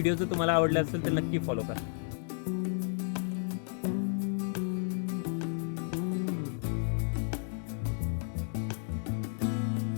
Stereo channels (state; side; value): silent; right; 56 dB below the other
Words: जर तुम्हाला आवडला असेल तर नक्की फॉलो करा.